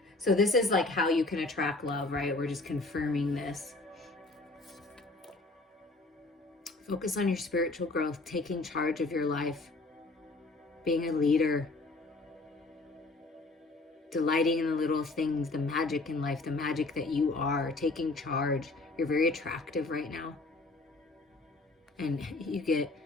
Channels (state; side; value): quieter; right; 3.3 dB